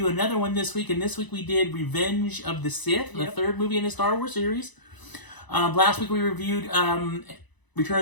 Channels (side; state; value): right; late; 1.0 ms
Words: another one this week, and this week we did Revenge of the Sith, the third movie in the Star Wars series. Last week we reviewed